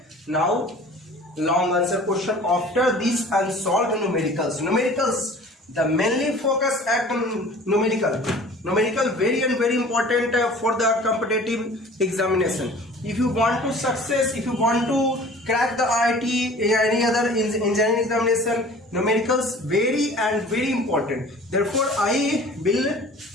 now long answer question after these unsolved numericals. The mainly focus at numerical very and very important for the competitive examination. If you want to success, if you want to crack the IIT any other engineering examination, numericals very and very important. Therefore I will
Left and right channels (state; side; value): normal; both; correlation 0.45